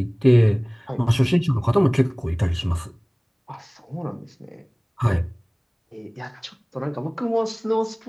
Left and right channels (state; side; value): identical; both; correlation 1.00